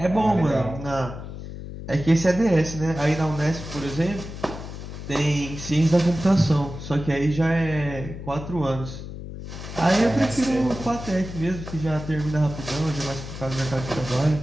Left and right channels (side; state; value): left; noise; hum, 10 dB below the sound